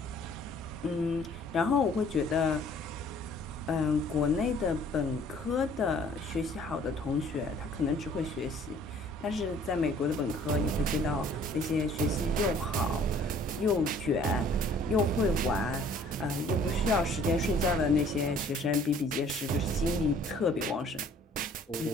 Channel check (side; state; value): both; normal; correlation 0.56